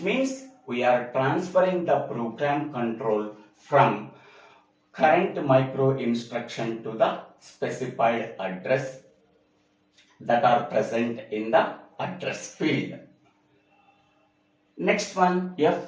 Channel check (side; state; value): both; identical; correlation 1.00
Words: means we are transferring the program control from current micro instruction to the specified address that are present in the address field. Next one,